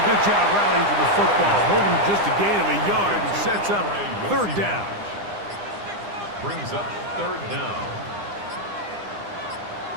good job rallying to the football, holding just a gain of a yard and sets up 3rd down. Brings up 3rd down.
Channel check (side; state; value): left; late; 9.9 ms